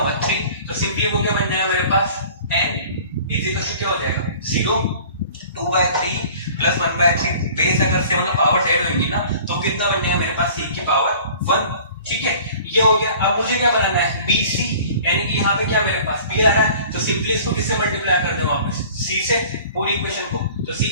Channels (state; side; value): inverted; both; correlation -0.47